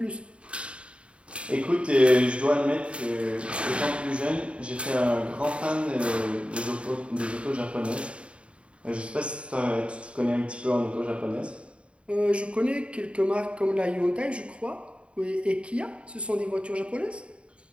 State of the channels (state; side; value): late; left; 0.059 ms